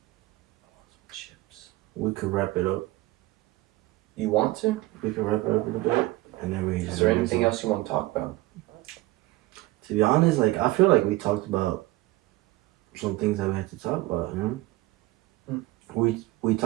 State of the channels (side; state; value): left; quieter; 19.0 dB